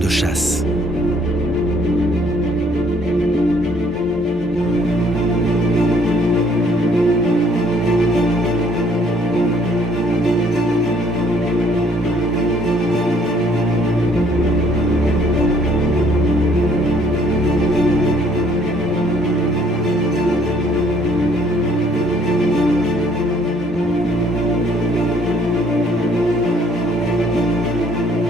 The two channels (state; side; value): normal; both; correlation 0.62